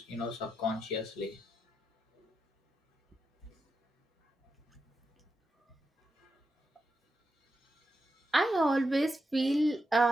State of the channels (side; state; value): both; normal; correlation 0.87